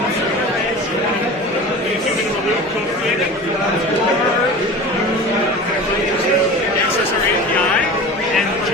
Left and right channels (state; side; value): normal; both; correlation 0.35